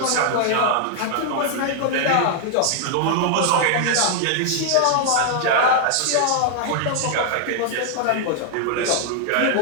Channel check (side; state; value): both; different; correlation 0.00